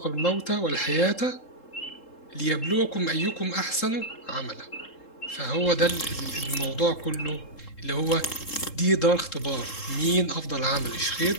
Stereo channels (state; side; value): late; right; 3.7 ms